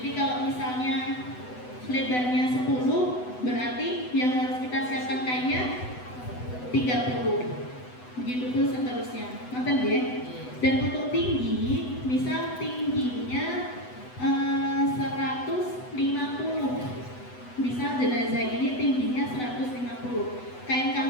kalau misalnya lebarnya 10, berarti yang harus kita siapkan kainnya 30. Begitu pun seterusnya. Ngerti ya? Dan untuk tinggi, misal tingginya 150. Misal jenazah ini tingginya 150. Kain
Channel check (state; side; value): late; right; 8.0 ms